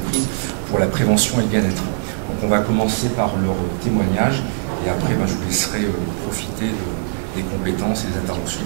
pour la prévention et le bien-être. Donc on va commencer par leur témoignage, et après je vous laisserai profiter des compétences et des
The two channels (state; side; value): silent; left; 65 dB below the other